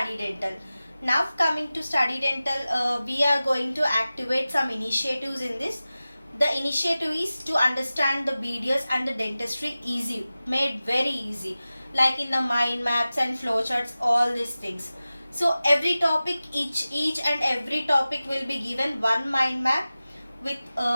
Dental. Now coming to Study Dental, we are going to activate some initiatives in this. The initiative is to understand the BDS and the dentistry easy, made very easy, like in the mind maps and flowcharts, all these things. So every topic, each and every topic will be given one mind map with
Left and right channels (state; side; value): inverted; both; correlation -0.96